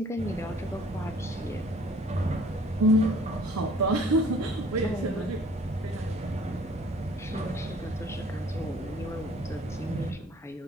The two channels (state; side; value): normal; both; correlation 0.54